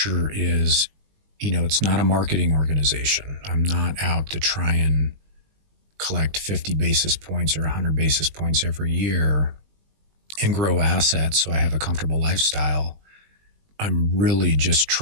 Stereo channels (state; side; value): late; left; 20 ms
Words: is, it's not a marketing organization. I'm not out to try and collect 50 basis points or 100 basis points every year and grow assets so I have a comfortable lifestyle. I'm really just